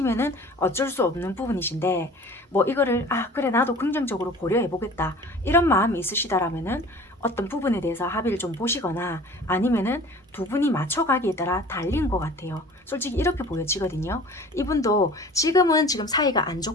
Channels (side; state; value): both; normal; correlation 0.44